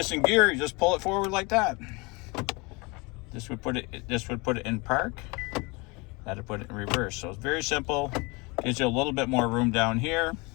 in gear, you just pull it forward like that. This would put it in park. That'd put it in reverse. So it's very simple. Gives you a little bit more room down here.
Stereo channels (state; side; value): quieter; right; 27.3 dB